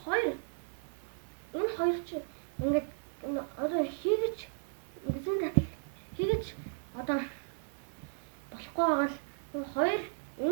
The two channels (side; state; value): left; silent; digital silence